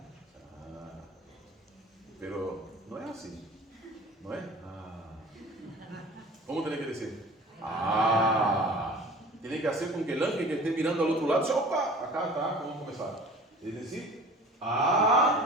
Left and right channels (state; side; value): normal; both; correlation 0.43